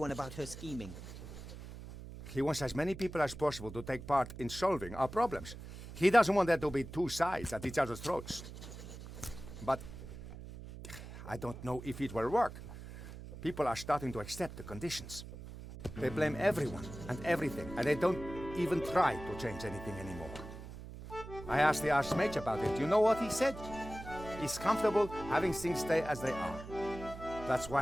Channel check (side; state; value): right; noise; hum, 12 dB below the sound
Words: about her scheming? He wants as many people as possible to take part in solving our problems. He doesn't want there to be two sides at each other's throats. But I don't know if it will work. People are starting to accept the conditions. They blame everyone and everything, and they don't even try to change anything anymore. I asked the Archmage about it. You know what he said? He's comfortable having things stay as they are. That's